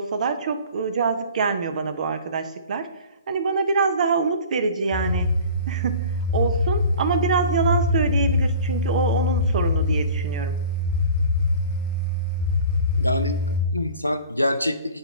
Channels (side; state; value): both; inverted; correlation -0.43